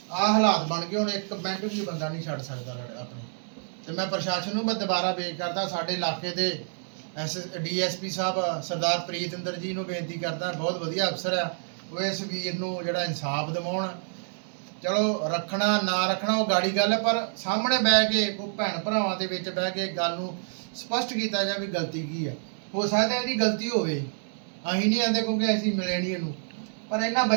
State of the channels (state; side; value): silent; left; digital silence